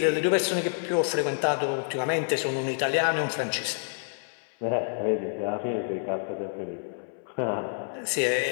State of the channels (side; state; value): right; silent; 59 dB below the other